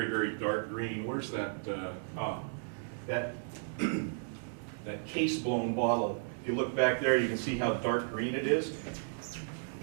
very dark green. Where's that, that case-blown bottle? If you look back there, you can see how dark green it is.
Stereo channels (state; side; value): silent; left; digital silence